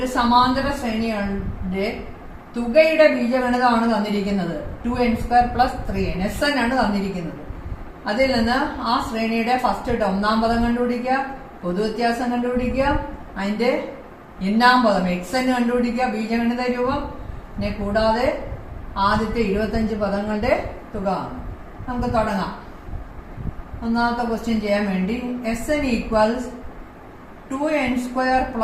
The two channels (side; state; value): both; identical; correlation 1.00